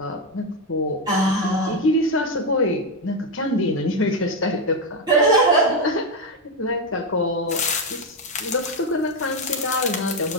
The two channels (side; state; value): both; normal; correlation 0.08